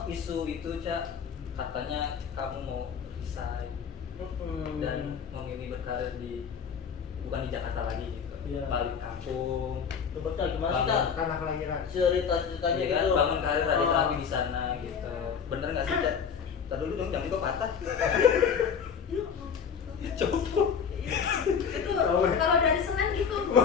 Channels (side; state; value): right; quieter; 6.8 dB